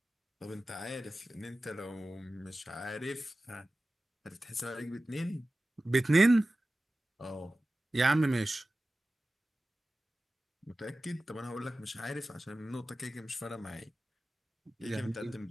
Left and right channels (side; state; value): both; normal; correlation 0.95